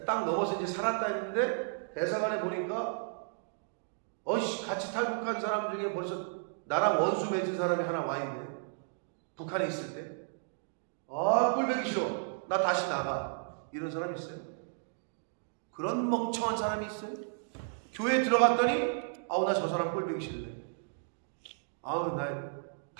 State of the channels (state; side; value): silent; left; digital silence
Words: 딱 넘어서 이제 살았다 했는데 대사관에 보니까 같이 탈북한 사람 중에 벌써 나랑 원수 맺은 사람이 하나 와 있네. 북한에 있을 때. 꼴보기 싫어. 나 다시 나가. 이런 사람 있어요? 그런 멍청한 사람이 있어요? 교회에 들어갔더니 나 저 사람 꼴보기 싫네. 나